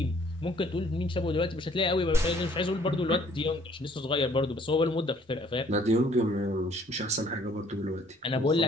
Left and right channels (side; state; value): both; normal; correlation 0.60